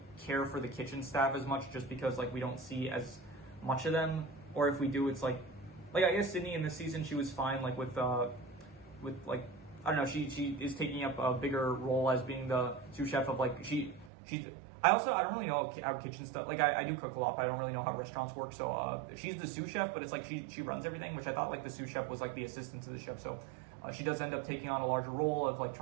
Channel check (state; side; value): drops out; left; at 14.1 s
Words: care for the kitchen staff as much just because like we don't see as much of them, or if we do, it's like I guess Sydney in this season she was fine like with like I don't know, she is taking up a bigger role as being the sous chef of like she's I don't really know how kitchen stuff, like I do cook a lot, but I don't really know how restaurants work. So she's the sous chef, but it's like she runs everything, which I thought like the sous chef was like the assistant to the chef. So she does end up taking on a larger role of like